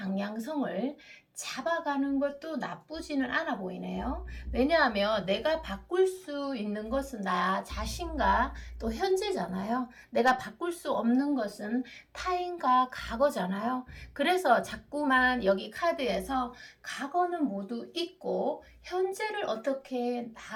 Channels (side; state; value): both; identical; correlation 1.00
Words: 잡아가는 것도 나쁘지는 않아 보이네요. 왜냐하면 내가 바꿀 수 있는 것은 나 자신과 또 현재잖아요. 내가 바꿀 수 없는 것은 타인과 과거잖아요. 그래서 자꾸만 여기 카드에서 과거는 모두 잊고 현재를 어떻게